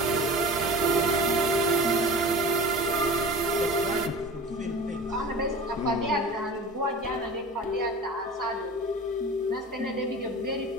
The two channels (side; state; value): both; normal; correlation 0.36